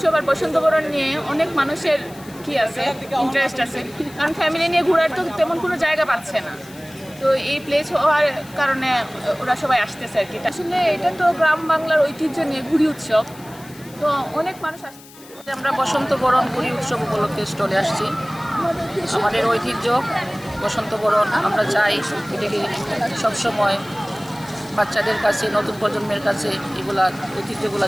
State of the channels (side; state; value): left; noise; hiss, 21 dB below the sound